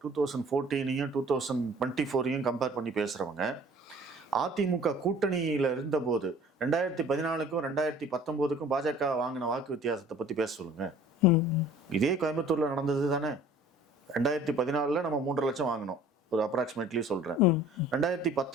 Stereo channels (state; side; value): normal; both; correlation 0.50